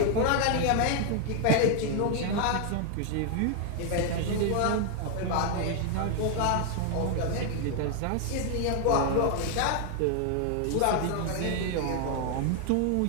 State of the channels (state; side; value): different; both; correlation 0.00